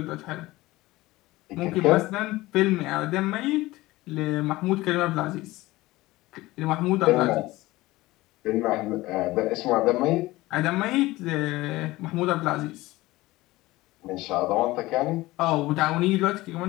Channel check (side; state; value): right; quieter; 18.9 dB